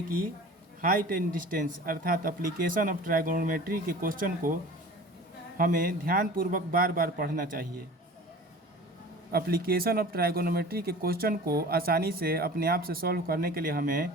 कि हाइट एंड डिस्टेंस अर्थात एप्लीकेशन ऑफ ट्राइगोनोमेट्री के क्वेश्चन को हमें ध्यानपूर्वक बार बार पढ़ना चाहिए। एप्लीकेशन ऑफ ट्राइगोनोमेट्री के क्वेश्चन को आसानी से अपने आप से सॉल्व करने के लिए हमें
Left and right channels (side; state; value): both; normal; correlation 0.40